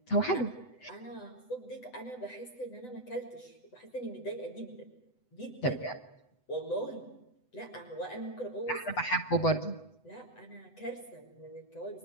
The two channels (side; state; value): right; late; 8.0 ms